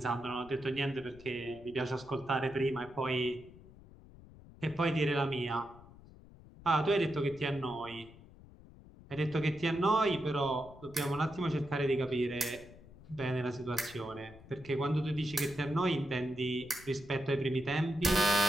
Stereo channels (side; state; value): left; noise; rumble, 20 dB below the sound